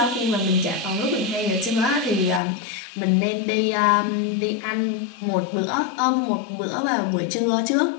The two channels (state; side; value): drops out; right; at 2.4 s